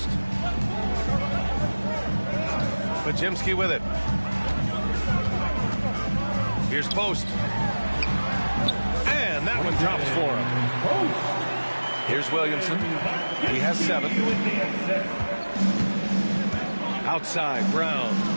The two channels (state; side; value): inverted; both; correlation -1.00